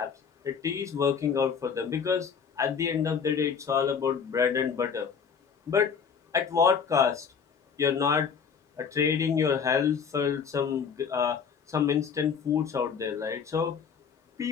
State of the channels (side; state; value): right; quieter; 6.6 dB